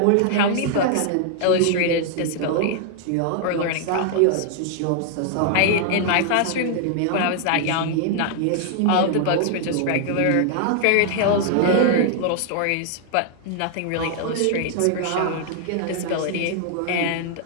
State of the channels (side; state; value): both; different; correlation 0.00